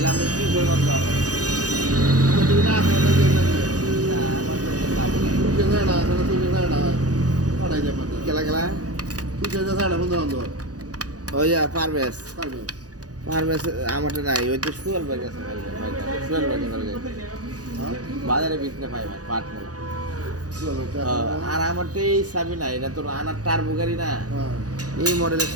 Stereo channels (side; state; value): left; late; 0.67 ms